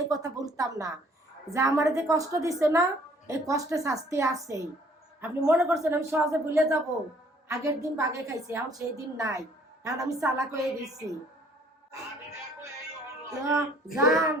এই কথা বলতাম না। যে আমার যে কষ্ট দিচ্ছে না, এই কষ্টে শাস্তি আছেই। আপনি মনে করছেন আমি সহজে ভুলে যাব? আগের দিন বাগে খাইছি, এখন সেই দিন নাই। এখন আমি চালাক হয়ে গেছি। আমি দেখো এই যান,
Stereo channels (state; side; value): normal; both; correlation 0.58